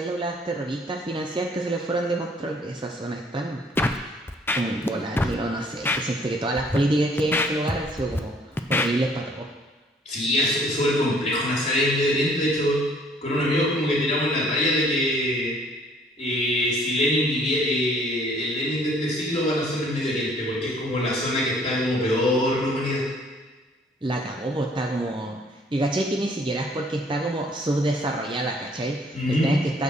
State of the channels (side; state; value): both; normal; correlation 0.59